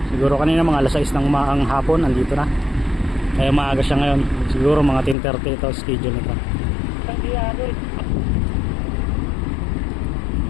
Siguro kanina mga alas 6 ng umaang hapon, andito na. Kaya maaga siya ngayon. Siguro mga 10:30 ito schedule nito.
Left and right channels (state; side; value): drops out; right; at 5.2 s